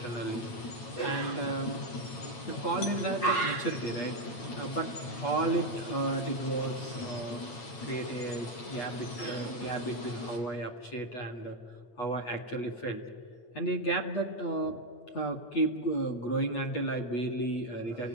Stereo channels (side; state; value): right; late; 8.3 ms